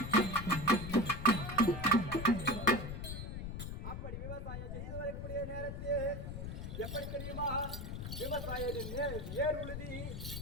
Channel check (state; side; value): noise; left; rumble, 6 dB below the sound